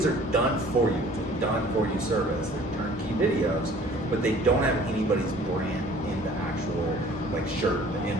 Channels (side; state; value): both; normal; correlation 0.51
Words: are done for you. It's a done for you service. They're turnkey videos, but they don't have anybody's brand in the actual like shirt, the